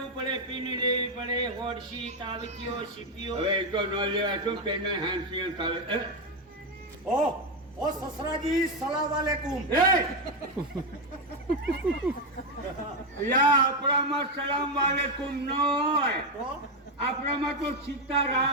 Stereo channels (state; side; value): normal; both; correlation 0.07